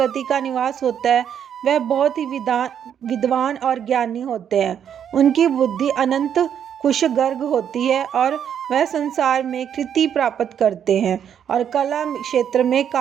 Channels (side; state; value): left; quieter; 8.8 dB